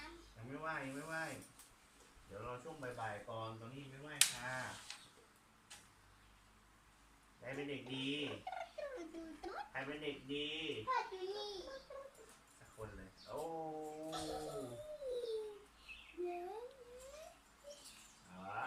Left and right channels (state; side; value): identical; both; correlation 1.00